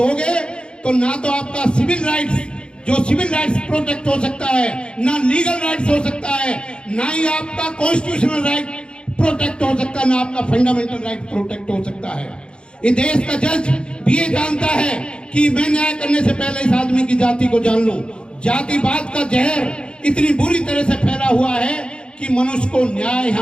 तो ना तो आपका सिविल राइट्स, जो सिविल राइट्स प्रोटेक्ट हो सकता है, ना लीगल राइट्स हो सकता है, ना ही आपका कॉन्स्टिट्यूशनल राइट प्रोटेक्ट हो सकता है, ना आपका फंडामेंटल राइट प्रोटेक्ट हो सकता है। इस देश का जज भी ये जानता है कि मैं न्याय करने से पहले इस आदमी की जाति को जान लूं। जातिवाद का जहर इतनी बुरी तरह से फैला हुआ है कि मनुष्य को न्याय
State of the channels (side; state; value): right; late; 0.054 ms